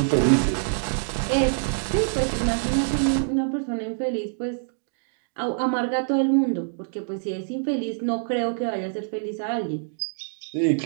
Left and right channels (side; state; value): left; silent; digital silence